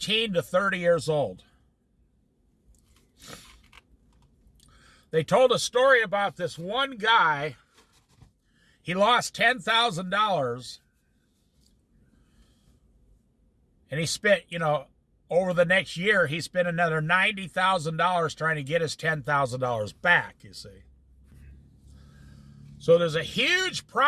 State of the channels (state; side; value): identical; both; correlation 1.00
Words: to 30 years old. They told a story about this one guy. He lost $10,000, and he spent, over the next year, he spent another $90,000 trying to get his $10,000 back, you see. So there's a huge